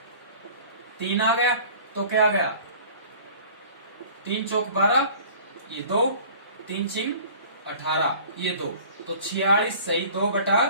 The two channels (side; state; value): both; inverted; correlation -0.47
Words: 3 आ गया, तो क्या आ गया? 3 चौक 12, ये 2, 3 चिंग 18, ये 2, तो 46 सही 2 बटा